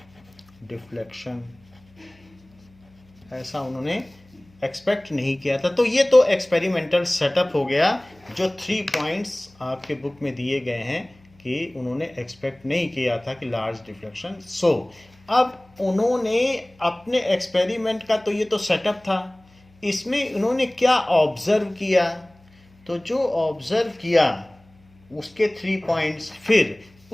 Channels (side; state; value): left; noise; hum, 29 dB below the sound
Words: deflection, ऐसा उन्होंने एक्सपेक्ट नहीं किया था. तो ये तो एक्सपेरिमेंटल सेटअप हो गया, जो 3 पॉइंट्स आपके बुक में दिए गए हैं कि उन्होंने एक्सपेक्ट नहीं किया था कि लार्ज डिफ्लेक्शन. सो अब उन्होंने अपने एक्सपेरिमेंट का तो ये तो सेटअप था, इसमें उन्होंने क्या ऑब्जर्व किया, तो जो ऑब्जर्व किया उसके 3 पॉइंट्स, फिर